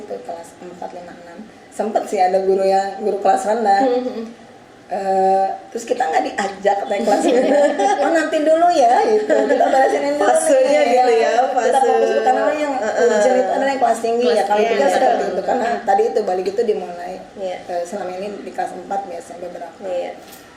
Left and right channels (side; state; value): both; identical; correlation 1.00